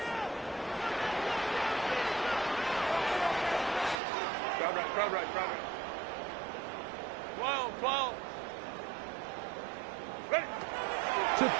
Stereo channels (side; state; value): left; drops out; at 4.0 s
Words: Crowd right. 12. Ready. To